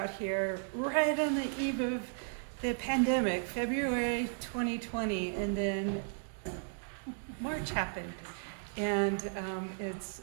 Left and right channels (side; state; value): left; silent; digital silence